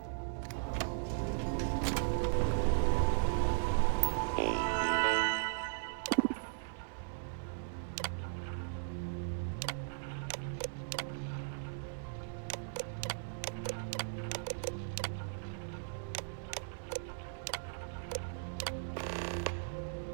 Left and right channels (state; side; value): silent; left; 53 dB below the other